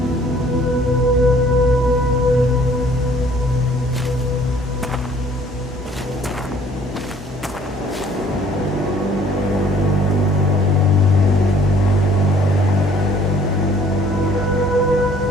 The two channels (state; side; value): normal; both; correlation 0.57